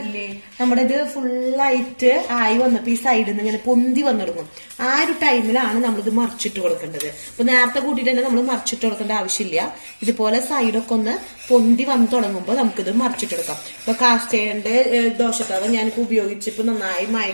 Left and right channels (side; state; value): both; inverted; correlation -1.00